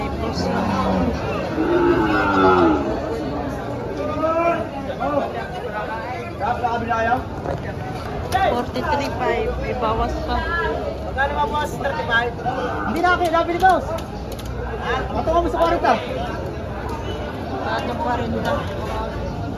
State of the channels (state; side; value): identical; both; correlation 1.00